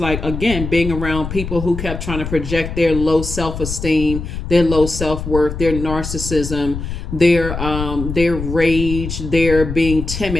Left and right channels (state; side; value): noise; left; rumble, 6 dB below the sound